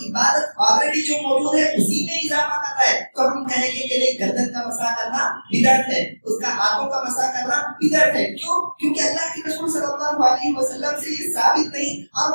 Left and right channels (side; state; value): both; inverted; correlation -1.00